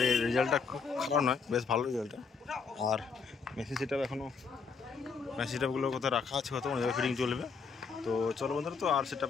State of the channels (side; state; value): right; quieter; 5.3 dB